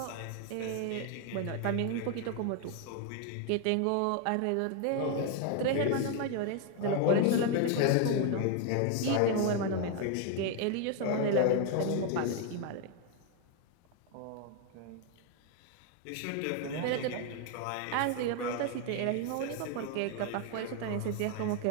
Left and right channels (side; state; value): both; different; correlation 0.01